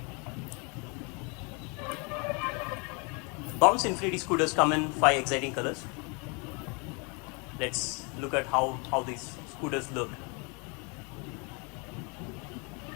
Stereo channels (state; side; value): quieter; right; 32.4 dB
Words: Bounce Infinity scooters come in 5 exciting colors. Let's look at how these scooters look.